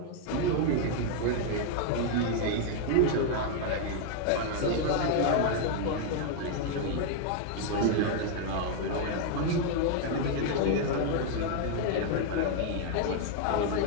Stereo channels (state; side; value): different; both; correlation 0.00